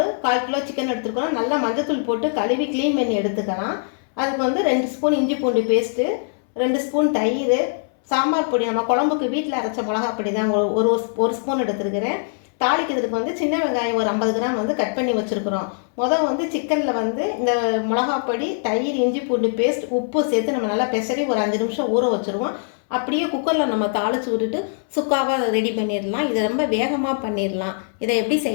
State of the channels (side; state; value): right; silent; 64 dB below the other